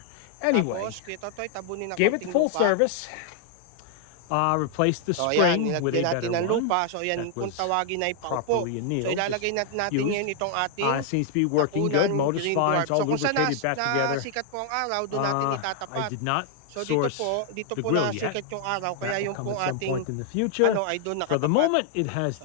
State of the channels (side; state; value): both; different; correlation 0.00